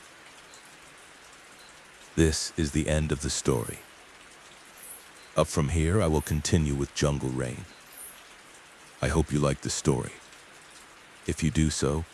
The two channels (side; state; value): both; identical; correlation 1.00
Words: This is the end of the story. Up from here, I will continue with Jungle Rain. I hope you like the story. If you do so,